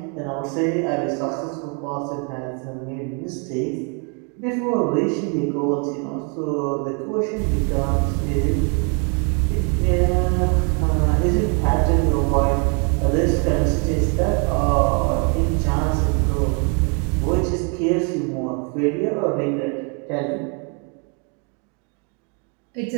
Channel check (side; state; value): left; quieter; 37.0 dB